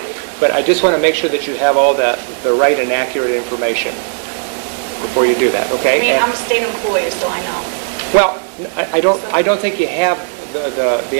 But I just want to make sure that you have all the right and accurate information before you do that, okay? I mean, And- I'm a state employee, so I know. Well, I don't think you have the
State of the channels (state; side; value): silent; left; 70 dB below the other